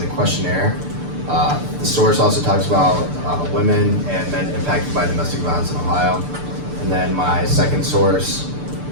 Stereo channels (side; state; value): left; late; 6.8 ms